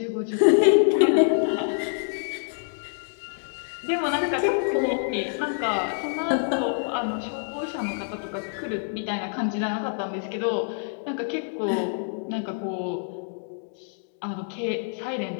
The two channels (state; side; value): silent; right; digital silence